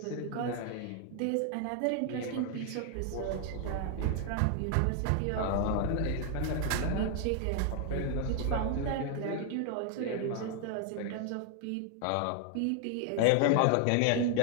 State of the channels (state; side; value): different; both; correlation 0.00